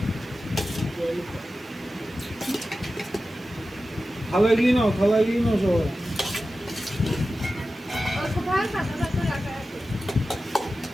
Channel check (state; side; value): normal; both; correlation 0.94